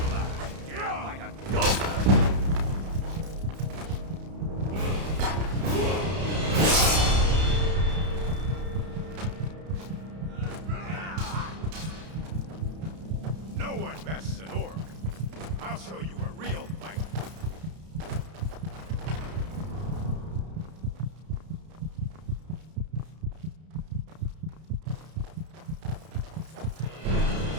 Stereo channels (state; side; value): late; left; 32 ms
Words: alive. Get out like a dog. No one messes an orc. I'll show you a real fight.